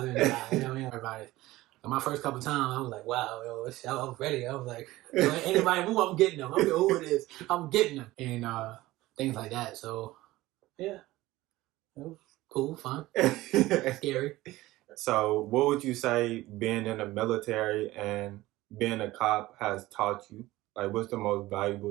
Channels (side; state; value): left; quieter; 17.7 dB